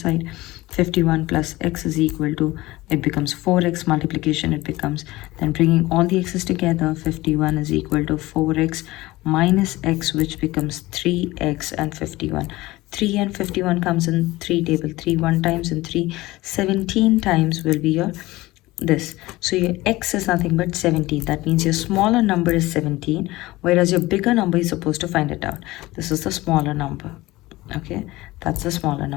51 plus x is equal to, it becomes 4x multiplication, it becomes, then bringing all the x's together, 51 is equal to 4x minus x, which becomes 3x and 51. 3 and 51 comes in 3 table. 3 1 times and 3 17 times will be your this. So your x is nothing but 17. That means your smaller number is 17, whereas your bigger number is supposed to find it out. This is the smaller number. Okay, that's the smaller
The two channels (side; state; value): right; quieter; 19.1 dB